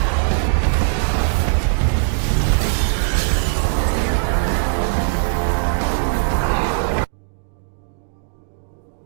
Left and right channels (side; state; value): left; silent; digital silence